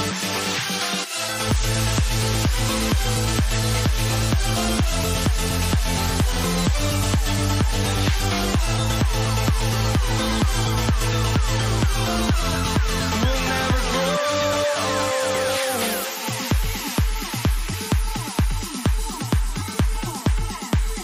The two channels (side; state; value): both; identical; correlation 1.00